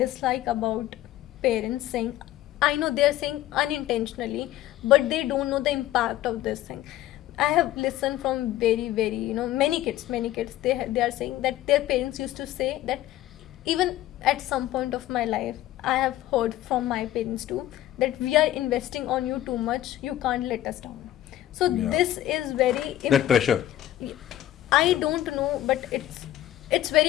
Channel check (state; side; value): quieter; right; 13.8 dB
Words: about parents saying, I know they're saying unintentionally, but they don't know the impact of this thing. I have listened from very many kids, they are saying that their parents used to say that, even at some point of my life I have heard from my parents too, that we are investing on you too much, you can't let us down. So this is very that pressure. I don't know, but it's